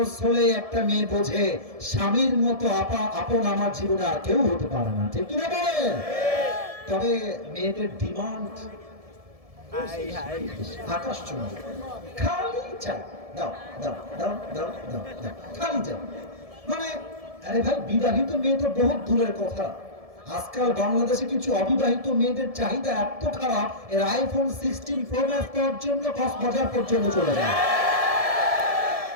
হলে একটা মেয়ে বোঝে স্বামীর মতো আপন আমার জীবনে আর কেউ হতে পারে না, ঠিক কিনা বলেন? তবে মেয়েদের ডিমান্ড আকাশ চুম্বি, খালি চাই, দাও দাও দাও দাও দাও দাও, খালি চাই। মানে আরে ভাই, বিবাহিত মেয়ে তো বহুত দূরের কথা, আজকাল বাংলাদেশে কিছু অবিবাহিত মেয়েদের চাহিদা এত খারাপ, এর আইফোন 16 প্রো ম্যাক্স পাওয়ার জন্য কক্সবাজার পর্যন্ত চলে যায়।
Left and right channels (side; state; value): left; late; 1.7 ms